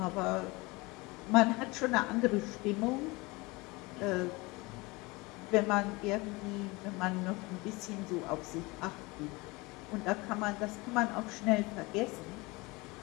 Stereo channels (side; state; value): right; quieter; 24.1 dB